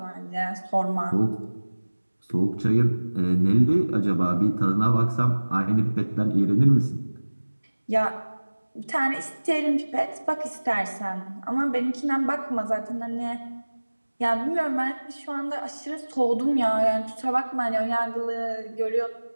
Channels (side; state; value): both; inverted; correlation -1.00